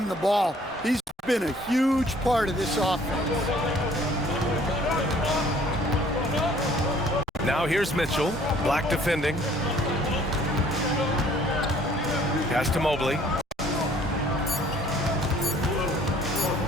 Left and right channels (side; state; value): both; normal; correlation 0.57